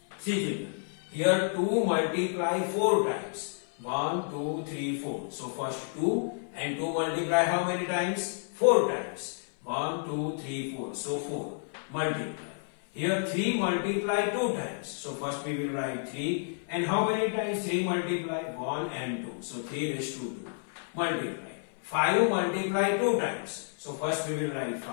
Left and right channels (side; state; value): right; silent; 57 dB below the other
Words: See children, here 2 multiply 4 times. 1, 2, 3, 4. So first 2 and 2 multiply how many times? 4 times. 1, 2, 3, 4. So 4 multiply. Here 3 multiply 2 times. So first we will write 3 and how many times 3 multiply? 1 and 2. So 3 raised to 2 multiply. 5 multiply 2 times. So first we will write